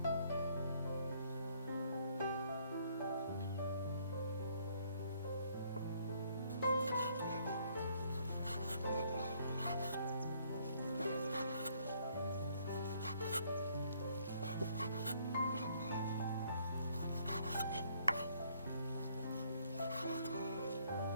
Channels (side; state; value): both; inverted; correlation -0.65